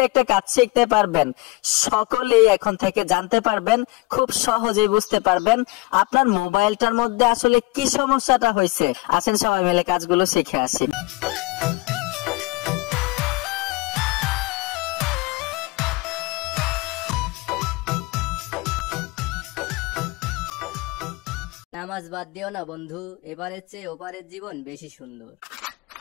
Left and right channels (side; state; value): right; quieter; 23.0 dB